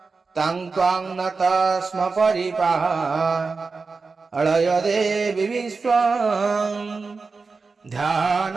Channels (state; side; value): quieter; left; 4.4 dB